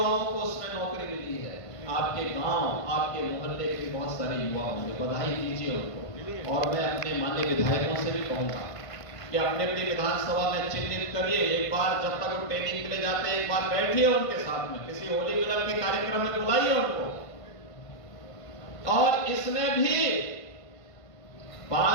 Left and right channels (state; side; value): late; right; 1.5 ms